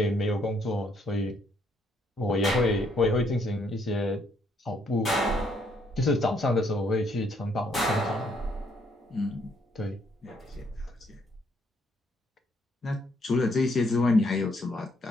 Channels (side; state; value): both; normal; correlation 0.70